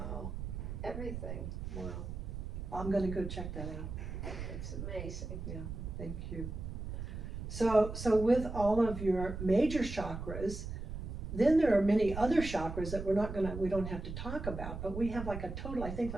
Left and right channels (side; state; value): right; noise; rumble, 6 dB below the sound